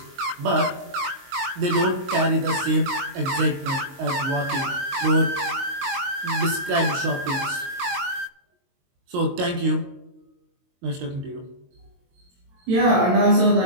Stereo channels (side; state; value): left; late; 22 ms